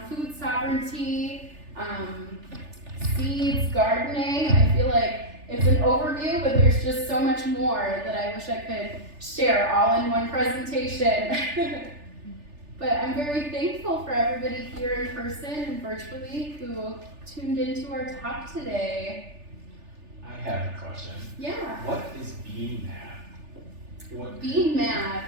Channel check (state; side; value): late; left; 3.4 ms